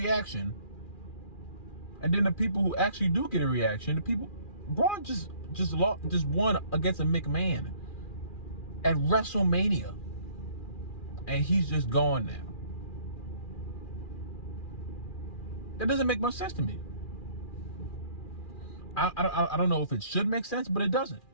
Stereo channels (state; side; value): late; right; 2.4 ms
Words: And then the people who actually do get a reaction, Braun just won against a McMahon at WrestleMania. And he's just gone now. That doesn't make much sense to me. I don't know if it should make sense, but it doesn't.